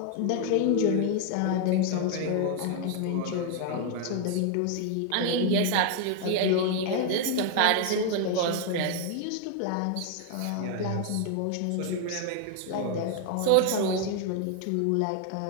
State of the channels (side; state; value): both; different; correlation 0.00